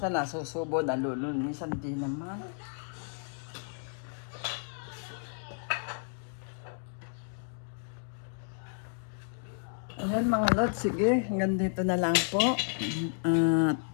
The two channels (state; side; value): silent; right; 56 dB below the other